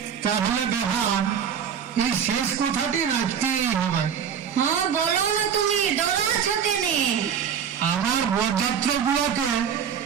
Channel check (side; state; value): left; quieter; 7.9 dB